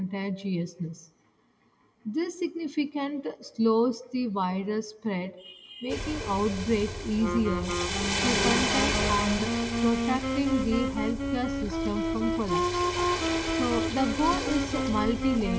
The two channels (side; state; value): both; identical; correlation 1.00